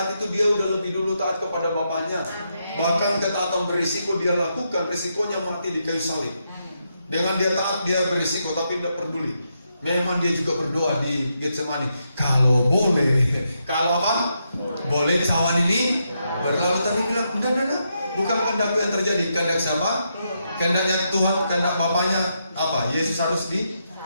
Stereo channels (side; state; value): both; inverted; correlation -0.82